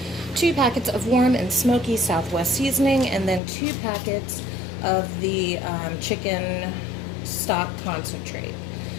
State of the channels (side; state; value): right; drops out; at 3.4 s